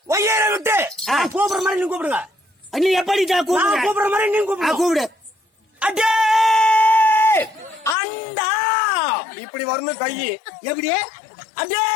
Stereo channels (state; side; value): drops out; right; at 8.0 s